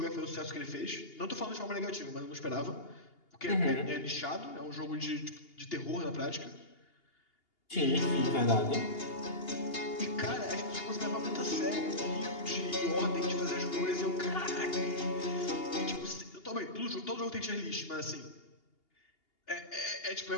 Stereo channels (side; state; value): right; late; 2.8 ms